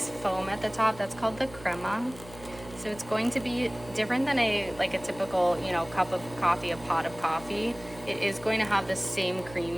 foam at the top. That's called the crema. So it's going to be different than a typical, cup of coffee, a pot of coffee. It is going to have the same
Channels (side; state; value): right; noise; hum, 18 dB below the sound